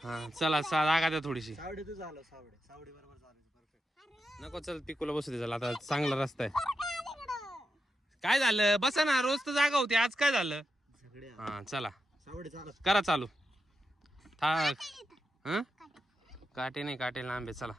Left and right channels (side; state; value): both; normal; correlation 0.88